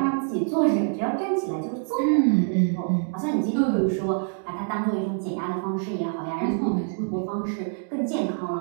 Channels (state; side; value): silent; left; 61 dB below the other